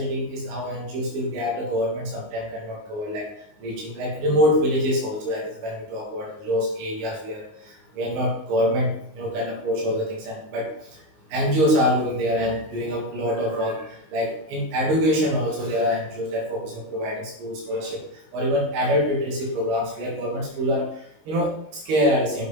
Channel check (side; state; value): left; late; 19 ms